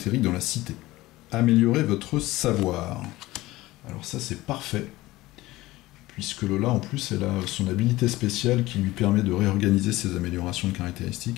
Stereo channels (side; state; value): right; quieter; 18.4 dB